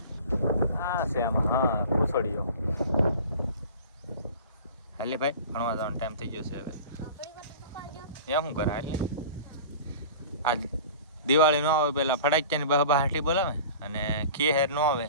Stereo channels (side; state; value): both; inverted; correlation -0.40